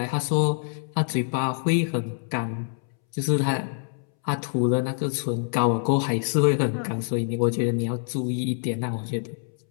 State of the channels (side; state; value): right; silent; 61 dB below the other